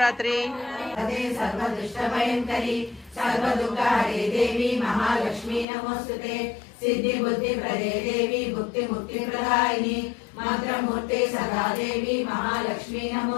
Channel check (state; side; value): drops out; right; at 5.7 s